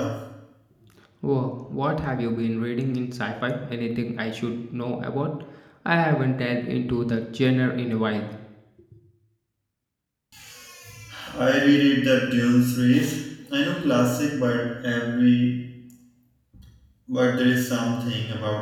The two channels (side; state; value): both; identical; correlation 1.00